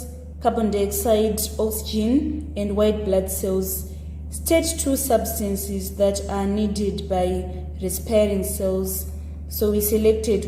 carbon dioxide, oxygen, and white blood cells. State 2 substances that are needed by respiring cells. So we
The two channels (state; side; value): identical; both; correlation 1.00